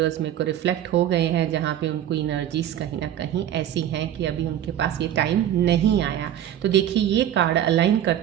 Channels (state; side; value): quieter; left; 11.1 dB